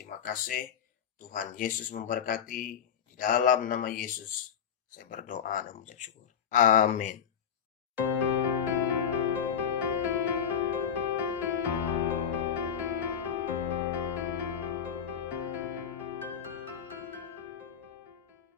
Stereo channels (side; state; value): right; quieter; 8.1 dB